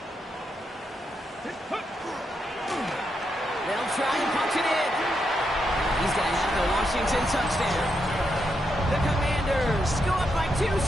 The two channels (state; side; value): normal; both; correlation 0.82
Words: They'll try and punch it in. He's going to have the Washington touchdown. The Commanders go up by 2